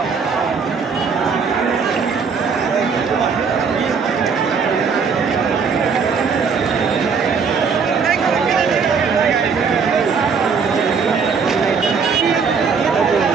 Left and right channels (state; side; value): quieter; left; 5.7 dB